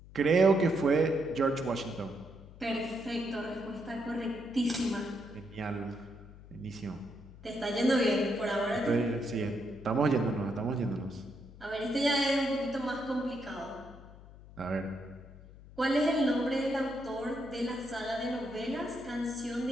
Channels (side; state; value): left; noise; hum, 19 dB below the sound